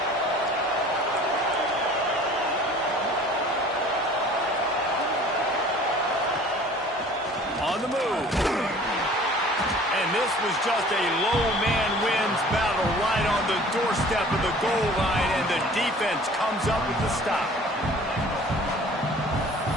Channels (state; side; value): normal; both; correlation 0.48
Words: On the move. And this was just a low man wins battle right on the doorstep of the goal line, and the defense comes up with the stop.